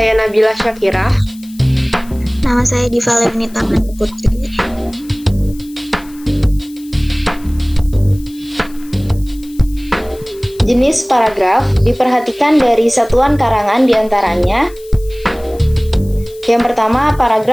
Nabila Syakirah. Nama saya Diva Lemnita Putri. Jenis paragraf diperhatikan dari satuan karangan diantaranya. Yang pertama,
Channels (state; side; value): noise; left; hiss, 23 dB below the sound